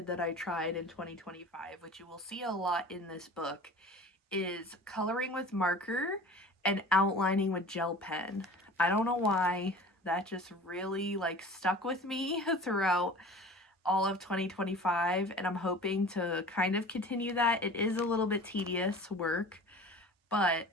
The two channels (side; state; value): both; normal; correlation 0.40